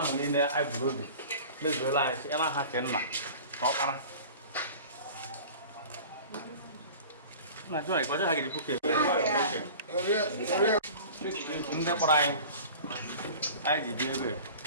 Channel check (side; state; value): both; inverted; correlation -0.40